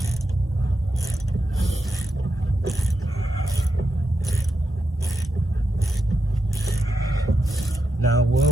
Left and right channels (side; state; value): both; normal; correlation 0.87